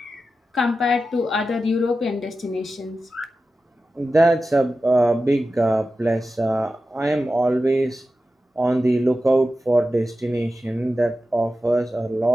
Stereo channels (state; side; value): normal; both; correlation 0.93